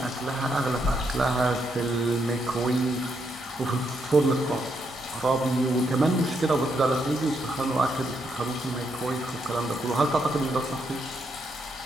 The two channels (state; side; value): normal; both; correlation 0.78